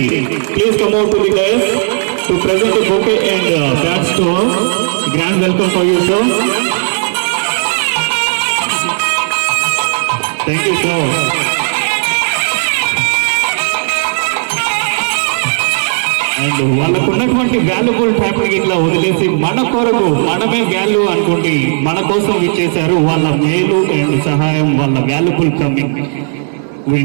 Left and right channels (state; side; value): silent; left; digital silence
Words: please come out to the dais to present the bouquet and badge to us. Grand welcome for you, sir. Thank you, sir. And వాళ్ళకు ఉన్నటువంటి వాల్యుబుల్ టైంకి ఇట్లా వదిలేసి మన కొరకు మనమే వాల్యూ అనుకోండి మన కోసం ఇచ్చేశారు. వాళ్ళ మేలు అండ్ సహాయం, వాళ్ళ valuable coming